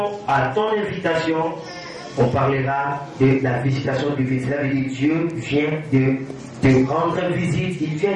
à ton invitation, on parlera de la visitation divine. Cela veut dire Dieu vient de te rendre visite, il vient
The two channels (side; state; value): both; identical; correlation 1.00